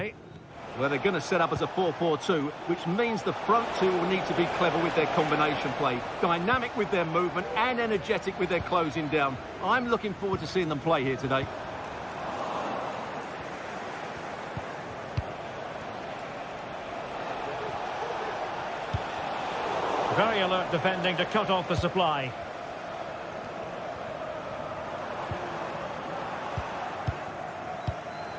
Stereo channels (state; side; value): identical; both; correlation 1.00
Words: Well, they're going to set up as a 4-4-2, which means the front two will need to be clever with their combination play, dynamic with their movement and energetic with their closing down. I'm looking forward to seeing them play here today. Very alert defending to cut off the supply.